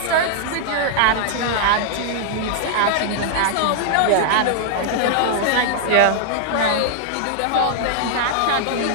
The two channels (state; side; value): different; both; correlation -0.01